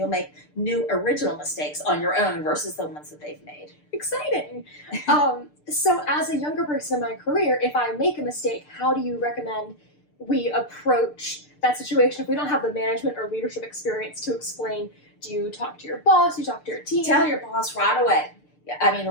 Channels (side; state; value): right; late; 6.7 ms